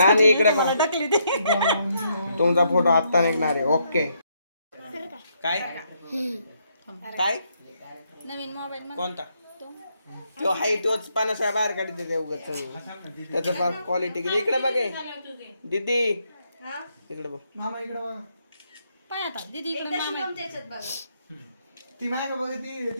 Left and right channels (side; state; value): both; inverted; correlation -0.75